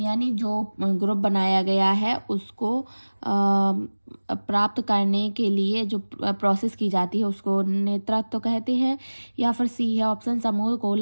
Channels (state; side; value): inverted; both; correlation -1.00